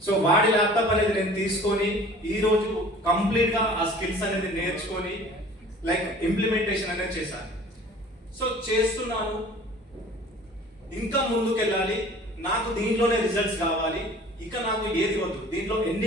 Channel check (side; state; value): both; normal; correlation 0.47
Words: సో వాడి ల్యాప్టాప్ అనేది నేను తీసుకొని ఈరోజు కంప్లీట్ గా ఆ స్కిల్స్ అనేది నేర్చుకొని లైక్ ఇంప్లిమెంటేషన్ అనేది చేశాను. సో చేస్తున్నాను, ఇంకా ముందుకెళ్ళాలి, నాకు దీంట్లోనే రిజల్ట్స్ కావాలి. ఇక నాకు ఏది వద్దు, దీంట్లో